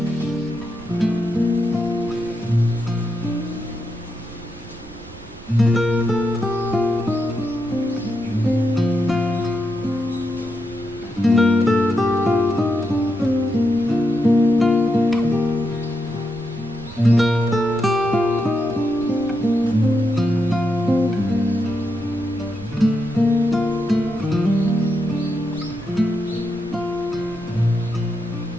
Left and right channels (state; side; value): noise; right; rumble, 19 dB below the sound